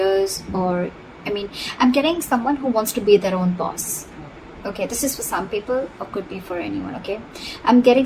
or, I'm getting someone who wants to be their own boss. Okay, this is for some people or could be for anyone, okay? I'm getting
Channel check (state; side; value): identical; both; correlation 1.00